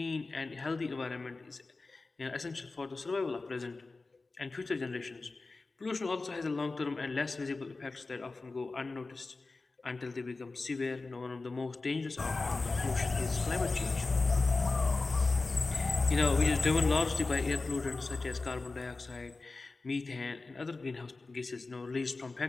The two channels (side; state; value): right; quieter; 3.6 dB